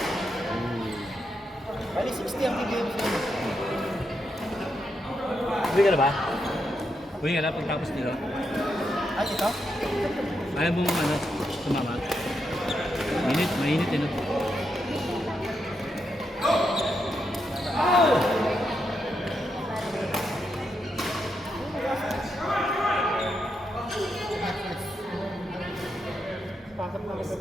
Bali 60 ang bigay mo sa inyo. Uwi ka na ba? Uwi ka na pagtapos nila. Ay, ito? Ayaw mo ano, sumama. Mainit eh no?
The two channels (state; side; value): normal; both; correlation 0.83